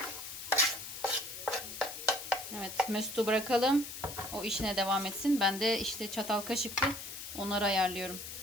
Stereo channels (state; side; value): noise; left; hiss, 10 dB below the sound